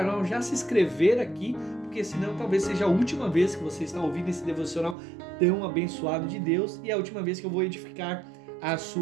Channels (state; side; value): drops out; left; at 5.0 s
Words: já se inscrever aqui, porque senão talvez seja a última vez que você está ouvindo esse devocional tão abençoado de Deus e a última vez que eu vou edificar a